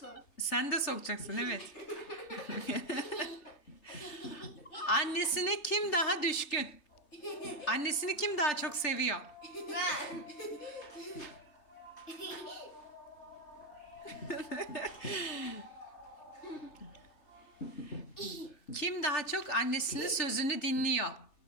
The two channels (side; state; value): right; late; 3.3 ms